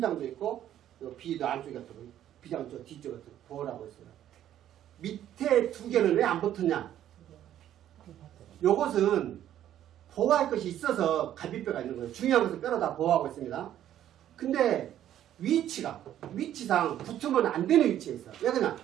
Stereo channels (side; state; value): left; quieter; 11.5 dB